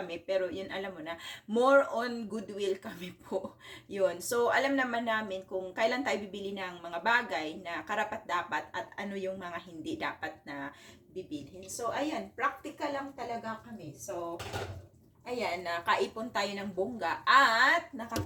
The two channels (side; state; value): both; identical; correlation 1.00